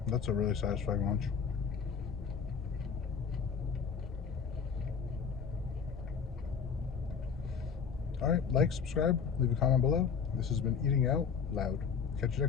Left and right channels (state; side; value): quieter; right; 6.4 dB